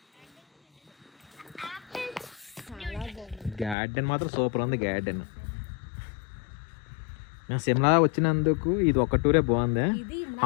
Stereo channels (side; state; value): right; drops out; at 3.8 s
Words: గార్డెన్ మాత్రం సూపర్ ఉంది. గార్డెన్ మేము సిమ్లా వచ్చినందుకు ఇది ఒక టూరే బాగుంది.